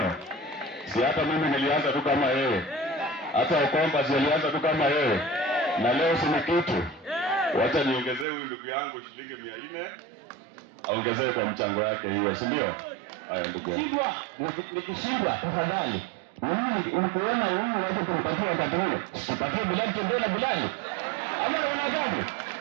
Si hata mimi nilianza tu kama yeye. Hata Okomba si alianza tu kama yeye. Na leo si kitu. Wacha niongezee huyu ndugu yangu shilingi 400. Aongezee kwa mchango wake hiyo, si ndio? Haya ndugu yangu. Nikishindwa tafadhali. Mimi ukiona huyu waje kumpatia wakati huo. Sipatie Bilali Tembele Bilali. Ama unaona gani?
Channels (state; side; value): drops out; left; at 8.2 s